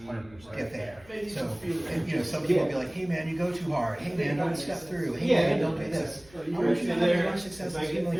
there. So, and, you know, some people will be like, hey man, you go too hard, hey man, don't step through, hey man, don't do this. I want you to have as much success as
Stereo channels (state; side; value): noise; left; hum, 25 dB below the sound